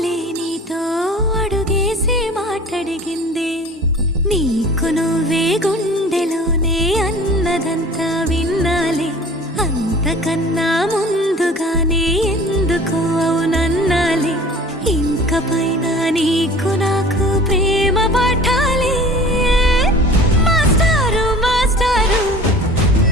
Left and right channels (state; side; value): normal; both; correlation 0.44